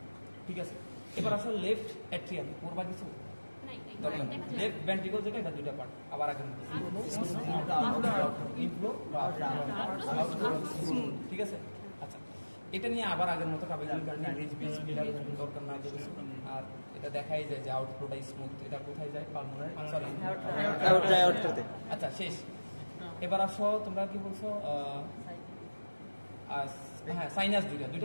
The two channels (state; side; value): inverted; both; correlation -1.00